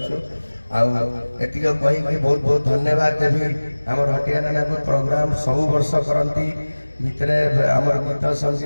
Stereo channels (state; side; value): inverted; both; correlation -1.00